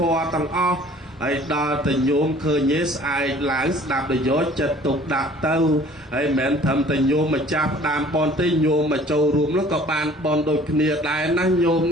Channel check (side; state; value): both; normal; correlation 0.52